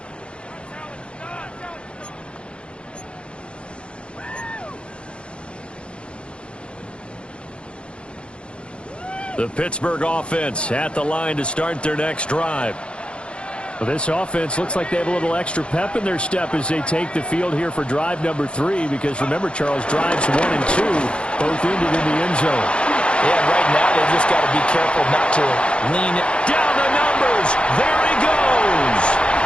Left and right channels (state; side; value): late; right; 0.058 ms